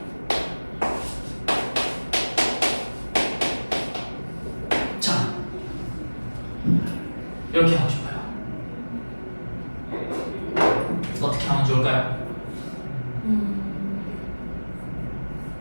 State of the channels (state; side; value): inverted; both; correlation -1.00